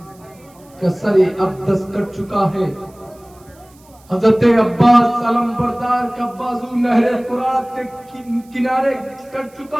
का सर अक़दस कट चुका है, हजरत अब्बास सलम बरदार का बाजू नहर फुरात के किनारे कट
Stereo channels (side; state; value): right; noise; hiss, 29 dB below the sound